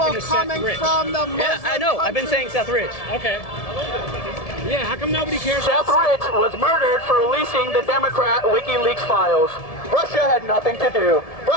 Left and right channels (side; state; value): right; late; 1.7 ms